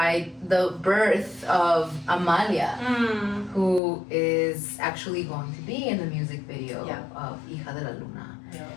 the birth of Amalia, who is actually going to be in the music video of Hija De La Luna.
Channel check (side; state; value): right; drops out; at 3.8 s